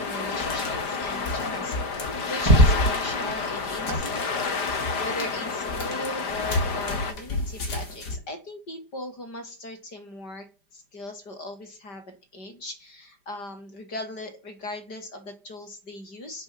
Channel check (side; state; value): right; late; 5.0 ms